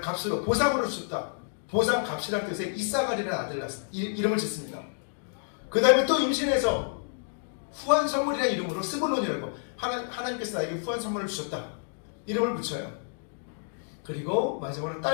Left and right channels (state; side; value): silent; right; digital silence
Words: 값으로 보상으로 주셨다. 보상 값이라는 뜻의 이사갈이라는 아들을 이름을 짓습니다. 그 다음에 또 임신해서 후한 선물이라는 이름으로 스불론이라고 하나님께서 나에게 후한 선물을 주셨다. 이름을 붙여요. 그리고 마지막으로